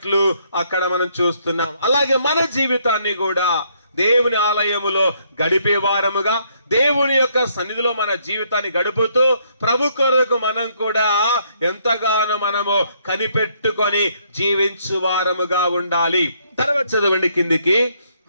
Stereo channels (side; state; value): both; inverted; correlation -0.70